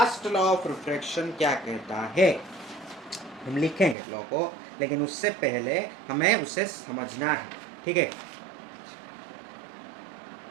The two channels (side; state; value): left; drops out; at 4.0 s